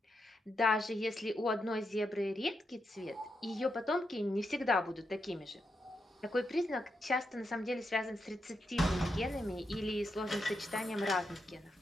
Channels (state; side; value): normal; both; correlation 0.84